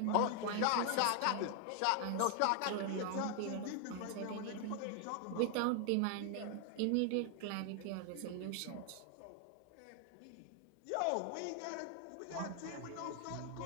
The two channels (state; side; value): different; both; correlation 0.00